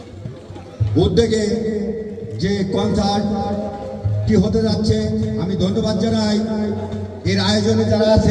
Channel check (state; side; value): identical; both; correlation 1.00